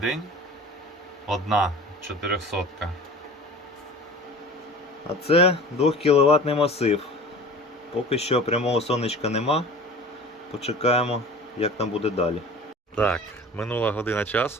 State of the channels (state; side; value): normal; both; correlation 0.40